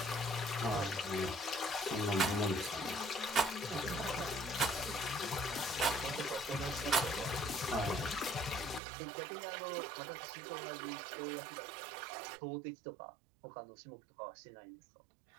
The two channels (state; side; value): drops out; left; at 8.8 s